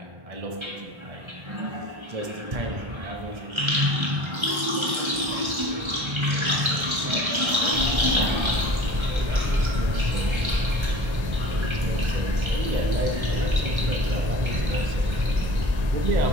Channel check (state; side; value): late; left; 1.3 ms